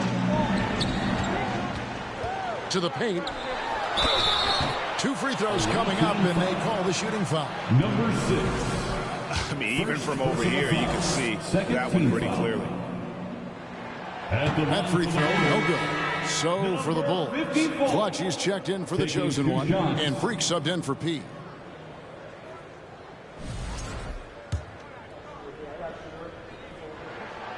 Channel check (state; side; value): identical; both; correlation 1.00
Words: To the paint. 2 free throws coming up, and they call the shooting foul. Number 6. I mean, even from over here, you can see that one pretty clearly. That free throw, no good. So for the Bulls, Clutch, he's checked in for the chosen one, and Freak subbed in for P.